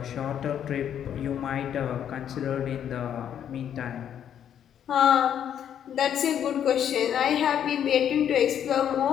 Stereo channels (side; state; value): right; quieter; 9.4 dB